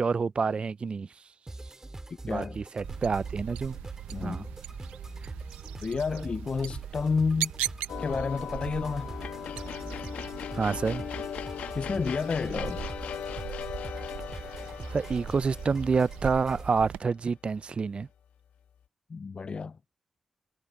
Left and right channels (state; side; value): normal; both; correlation 0.82